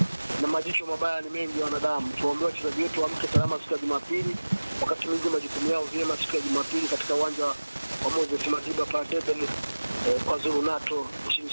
na majicho mabaya ni mengi ya wanadamu. Tuombe wachezaji wetu waamke salama siku ya Jumapili, wakati mwingi majukumu yao vyema siku ya Jumapili katika uwanja wa Moses Madiba pale Durban kwa Zulu Nato nchini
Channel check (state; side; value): inverted; both; correlation -1.00